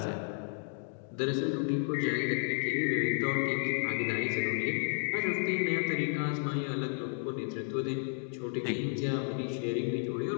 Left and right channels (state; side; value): silent; right; 56 dB below the other